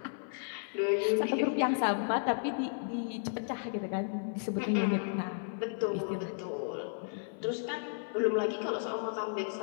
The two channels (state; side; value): silent; right; 55 dB below the other